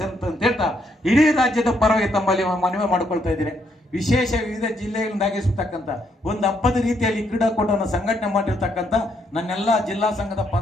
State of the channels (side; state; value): both; normal; correlation 0.74